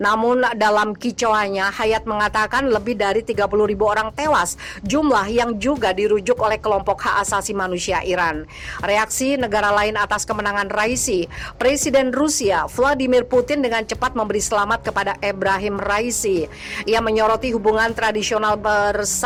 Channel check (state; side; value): identical; both; correlation 1.00